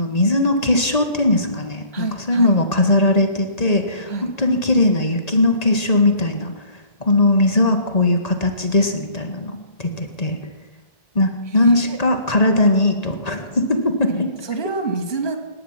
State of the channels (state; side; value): late; right; 1.8 ms